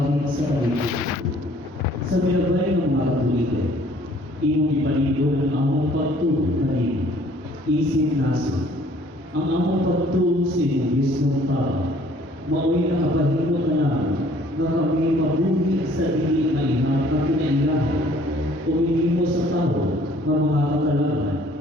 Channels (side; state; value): both; normal; correlation 0.57